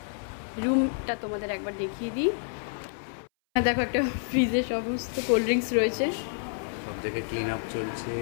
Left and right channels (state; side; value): silent; right; 59 dB below the other